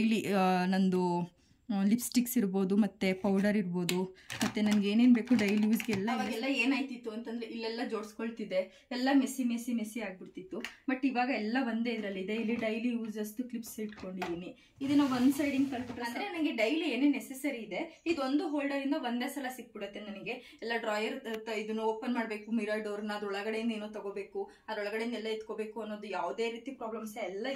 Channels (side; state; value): both; identical; correlation 1.00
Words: ನಂದು ಲಿಪ್ಸ್ಟಿಕ್ಸ್ ಇರ್ಬೋದು ಮತ್ತು ಪೌಡರ್ ಇರ್ಬೋದು ಮತ್ತು ನನಗೆ ಏನೇನು ಬೇಕು ಡೈಲಿ ಯೂಸ್ಗೆ ಎಲ್ಲ ಏನಾಯ್ತಿತ್ತು ಅಂತಂದರೆ ಇಲ್ಲೆಲ್ಲ ಜೋಡಿಸ್ಕೊಳ್ತಿದ್ದೆ, ಎಲ್ಲ ಮೆಸ್ಸಿ ಆಗಿಬಿಡ್ತಿತ್ತು. ಬಟ್ ಇವಾಗ ಎಲ್ಲ ಒಂದೇ ಇದರಲ್ಲಿ ಇದೆ. ಇಲ್ಲಿ ಡೈಲಿ ಯೂಸ್ ಅಷ್ಟು ಕ್ಲಿಪ್ಸ್ ಇಟ್ಕೊಂಡಿದ್ದೀನಿ. ಇದನ್ನು ಒಂದು ಸೈಡಿಂಗ್ ಕಲ್ಬಿಟ್ರೆ ಅಂದರೆ ನನಗೆ ಡೈಲಿ ಏನೇ ನೆಸೆಸರಿ ಇದೆ ಇದೊಂದು ಹೋಲ್ಡರಿಂದ ಒಂದೇ ಸಲ ಸಿಕ್ಬಿಡುತ್ತೆ ನನಗೆ. ಎಲ್ಲ ಡ್ರಾಯರ್ ಇದನ್ನು ಓಪನ್ ಮಾಡಬೇಕು, ಮಿರರ್ ಡೋರ್ನ ಅದ್ರೊಳಗಡೆಯಿಂದ ಏನೋ ತಗೋಬೇಕು, ಅದ್ರೊಳಗಡೆಯಿಂದ ಎಲ್ಲ ಎತ್ಕೋಬೇಕು ಅನ್ನೋದು ಯಾವುದೇ ರೀತಿ ಪ್ರಾಬ್ಲಮ್ಸ್ ಎಲ್ಲ